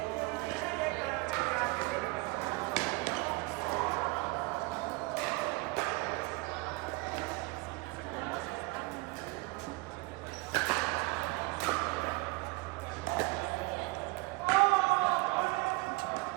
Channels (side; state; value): left; quieter; 24.5 dB